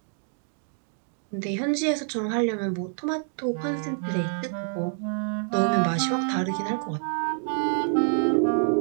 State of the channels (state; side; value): silent; left; 60 dB below the other